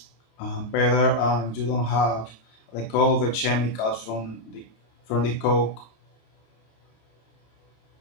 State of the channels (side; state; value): right; late; 26 ms